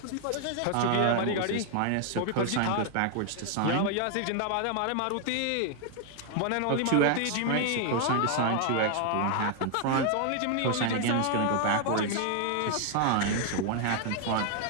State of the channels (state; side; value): different; both; correlation 0.00